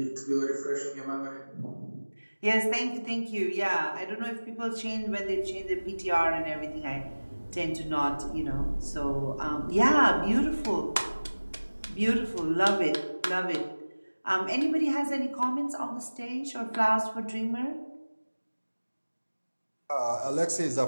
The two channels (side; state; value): both; inverted; correlation -1.00